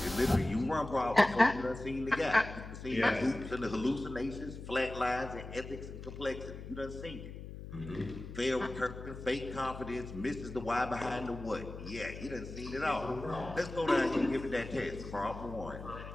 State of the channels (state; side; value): noise; left; hum, 11 dB below the sound